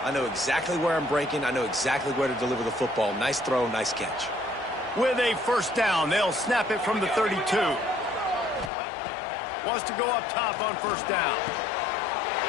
I know exactly where I'm breaking. I know exactly where to deliver the football. Nice throw, nice catch. With a first down, they'll snap it from the 32. Wants to go up top on first down.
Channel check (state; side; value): drops out; right; at 8.7 s